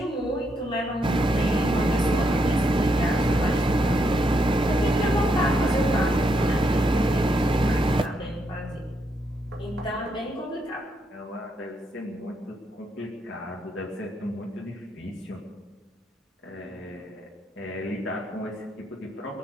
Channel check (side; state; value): both; normal; correlation 0.78